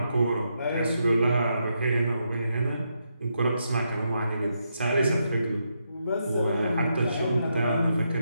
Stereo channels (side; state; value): both; inverted; correlation -0.81